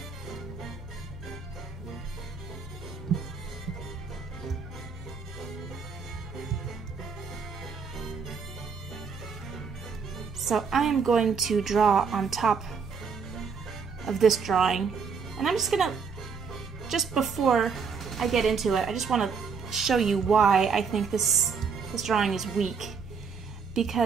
So I am going to draw on top of this drawing, and I'm just gonna, just before I get into it, I just want to show you why I think this drawing is weak,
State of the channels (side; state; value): left; quieter; 5.7 dB